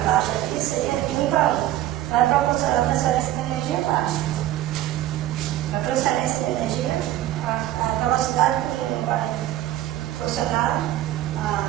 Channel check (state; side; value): quieter; left; 13.9 dB